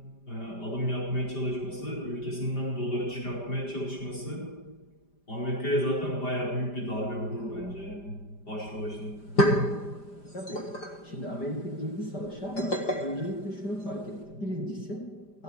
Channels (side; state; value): right; late; 5.0 ms